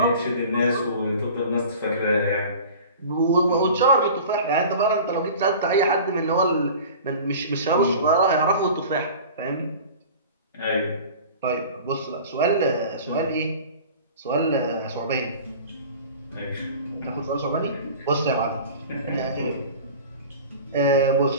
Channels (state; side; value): inverted; both; correlation -0.40